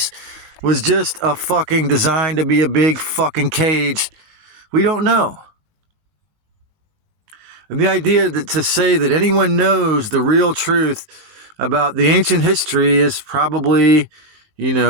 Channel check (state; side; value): late; left; 20 ms